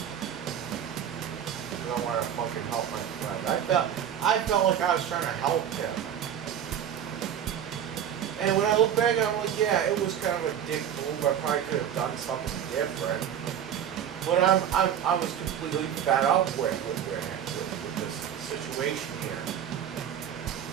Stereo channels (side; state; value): left; quieter; 9.4 dB